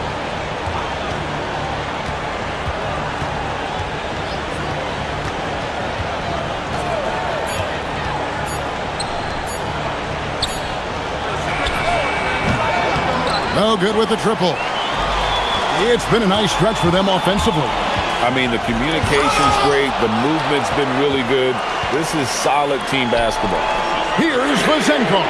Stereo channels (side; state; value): both; identical; correlation 1.00